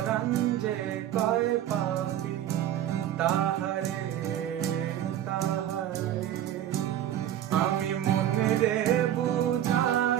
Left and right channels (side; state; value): left; quieter; 11.4 dB